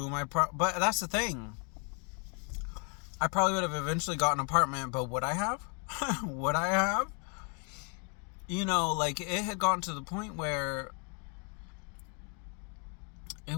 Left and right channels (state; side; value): quieter; right; 37.4 dB